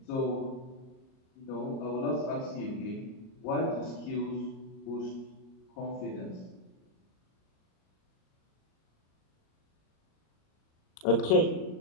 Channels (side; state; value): right; late; 38 ms